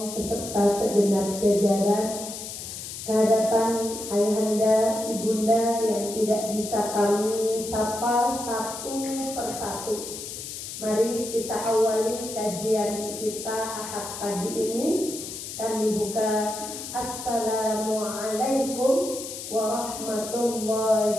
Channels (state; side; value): noise; left; hiss, 9 dB below the sound